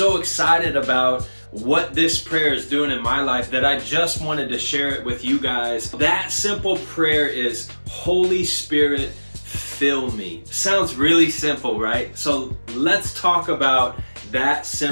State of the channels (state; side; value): inverted; both; correlation -1.00